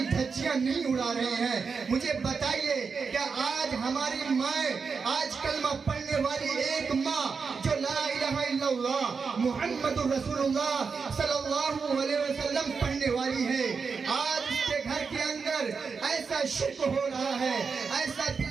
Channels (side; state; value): left; quieter; 5.3 dB